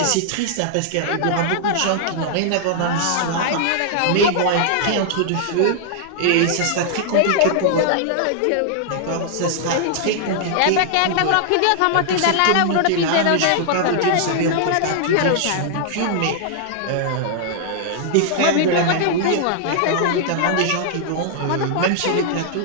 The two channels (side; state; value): both; different; correlation -0.01